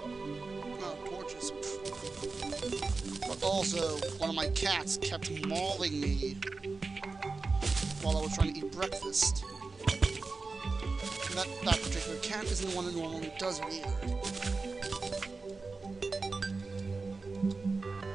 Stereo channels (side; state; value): left; quieter; 4.0 dB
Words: torches. But also, one of my cats kept mauling me while I was trying to eat breakfast. And that particular cat isn't the one that normally does it either.